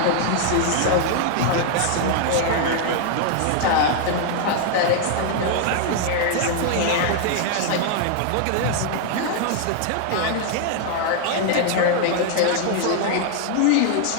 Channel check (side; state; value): both; different; correlation 0.00